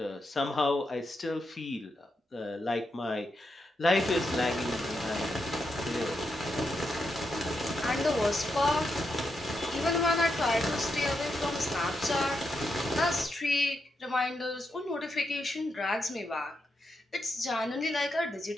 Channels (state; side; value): normal; both; correlation 0.84